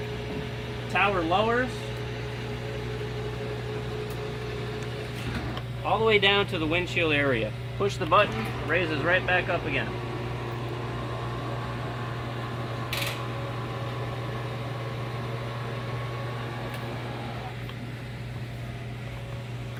tower lowers all the way down to the windshield area. Push the button, raises right back up again.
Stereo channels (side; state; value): both; identical; correlation 1.00